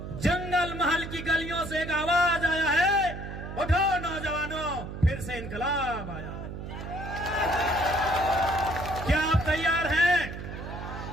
जंगल महल की गलियों से एक आवाज आया है, उठो नौजवानों फिर से इनकलाब आया। क्या आप तैयार हैं?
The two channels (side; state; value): right; noise; hum, 8 dB below the sound